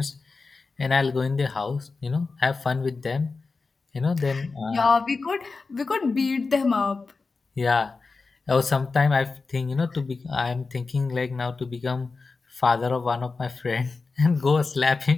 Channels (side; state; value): right; quieter; 4.2 dB